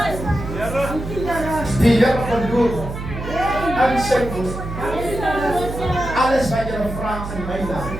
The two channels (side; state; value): right; noise; hum, 8 dB below the sound